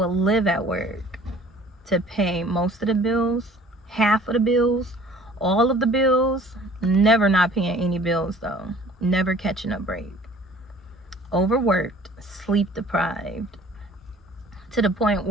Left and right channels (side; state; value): both; normal; correlation 0.51